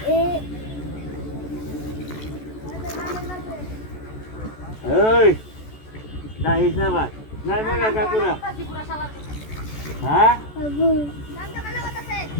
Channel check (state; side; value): late; right; 14 ms